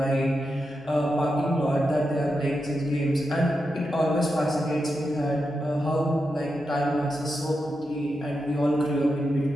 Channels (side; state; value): both; normal; correlation 0.87